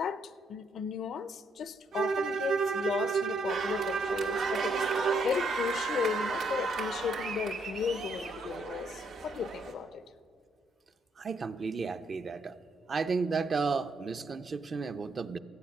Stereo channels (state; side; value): normal; both; correlation 0.73